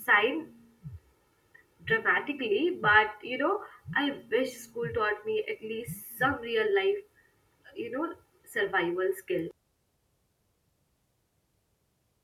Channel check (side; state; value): both; identical; correlation 1.00